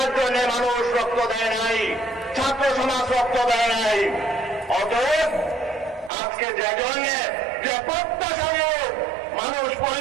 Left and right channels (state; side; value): drops out; left; at 6.1 s